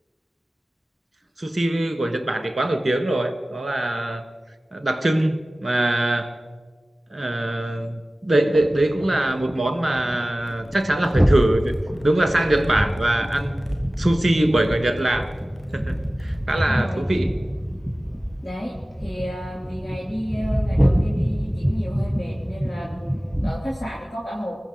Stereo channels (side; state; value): both; normal; correlation 0.97